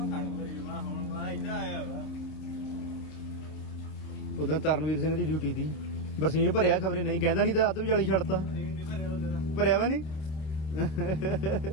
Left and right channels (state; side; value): late; right; 26 ms